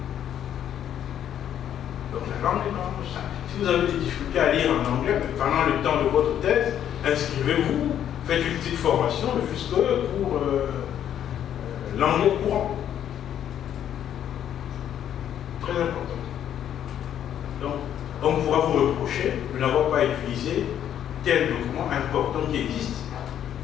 Donc la langue n'est pas un obstacle. Si vous avez des difficultés à lire en anglais, pendant le temps de votre thèse, inscrivez-vous, faites une petite formation, ne fût-ce que pour l'anglais courant. Très important. Donc, on pourra vous reprocher de n'avoir pas utilisé tel document important qui existe.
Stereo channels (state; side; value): quieter; right; 10.1 dB